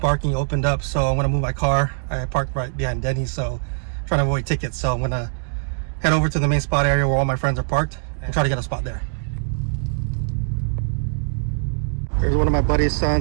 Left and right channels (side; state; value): left; silent; digital silence